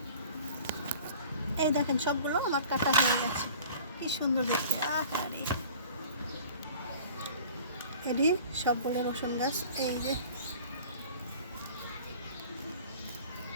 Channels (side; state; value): both; inverted; correlation -0.45